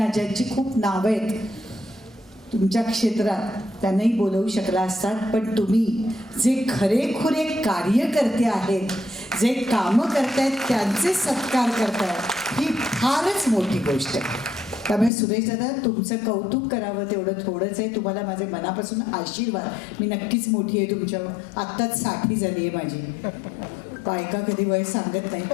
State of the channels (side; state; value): right; drops out; at 15.1 s